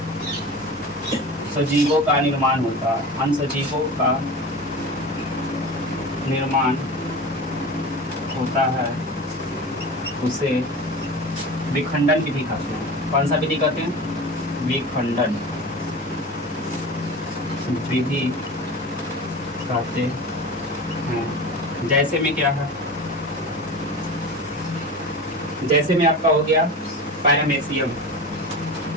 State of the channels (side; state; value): both; normal; correlation 0.31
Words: सजीवों का निर्माण होता है। अन्य सजीवों का निर्माण होता है, उसे विखंडन विधि कहते हैं। कौन सा विधि कहते हैं? विखंडन विधि कहते हैं। जैसे में क्या है? जैसे में आपका हो गया पैरामेसियम,